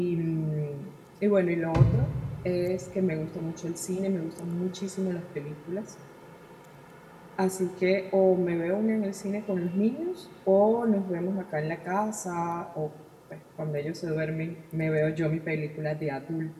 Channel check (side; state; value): both; identical; correlation 1.00